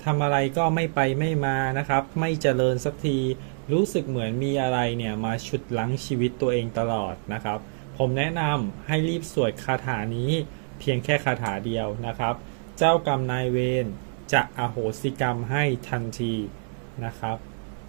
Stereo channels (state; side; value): silent; left; digital silence